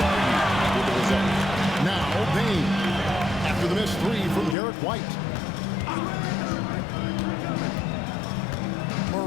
argue with the results. Now, Bane, after the missed 3 from Derek White.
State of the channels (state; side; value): drops out; right; at 4.5 s